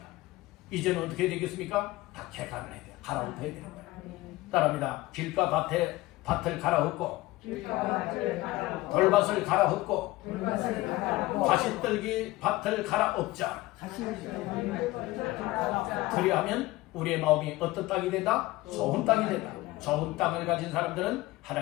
이제는 어떻게 되겠습니까? 다 개간을 해야 돼요. 갈아엎어야 되는 거예요. 따라합니다. 길가 밭을 갈아엎고 돌밭을 갈아엎고 가시떨기 밭을 갈아엎자. 그리하면 우리의 마음이 어떤 땅이 된다? 좋은 땅이 된다. 좋은 땅을 가진 사람들은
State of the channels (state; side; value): quieter; right; 18.8 dB